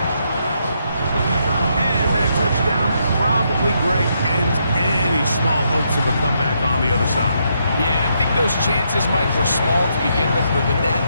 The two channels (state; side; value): inverted; both; correlation -0.77